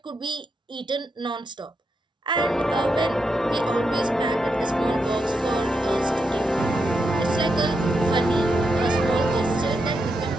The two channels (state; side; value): normal; both; correlation 0.84